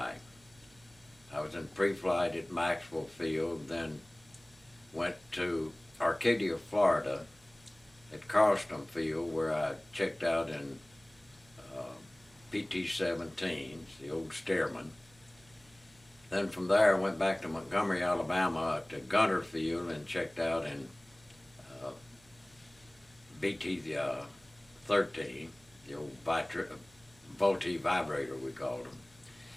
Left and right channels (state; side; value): noise; right; hum, 28 dB below the sound